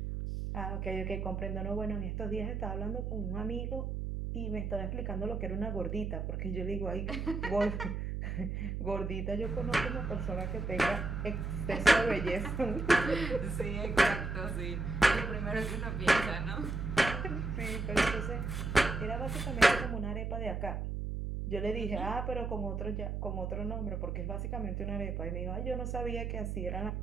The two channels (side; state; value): right; noise; hum, 2 dB below the sound